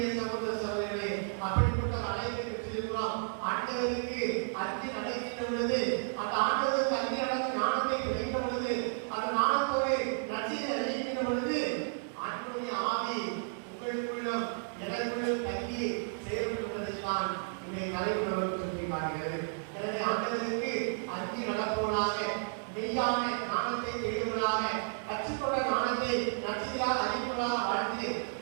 சகோதர சகோதரர்களே, அப்படிப்பட்ட அழைப்பை பெற்றிருக்கிறோம். ஆண்டவருக்கு அஞ்சு நடக்கின்ற பொழுது, அந்த ஆண்டவருக்கு அஞ்சு நடந்த ஞானத்தை கிடைக்கின்ற பொழுது, அந்த ஞானத்தோடு நற்செய்தி அறிவிக்கின்ற பொழுது, ஆண்டவருடைய ஆவி உங்களுக்குள்ளும் எனக்குள்ளும் தங்கி செயல்படுவதைத்தான் இன்றைய தலைவர்கள் சொல்லி காட்டுகிறது. எனவே ஆண்டவருக்கு அஞ்சு நடப்பவர்களாக, மெய்யான ஞானத்தை தேடுவதாக, கற்றுக்கொண்ட ஞானத்தை நற்செய்தியாக அறிவிப்பதாக வாழ்ந்து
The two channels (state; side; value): silent; left; digital silence